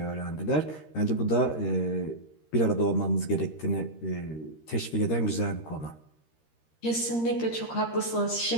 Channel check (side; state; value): right; late; 13 ms